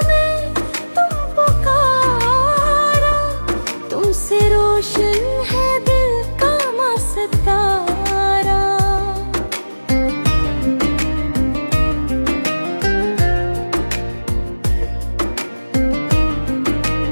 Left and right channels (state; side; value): inverted; both; correlation -1.00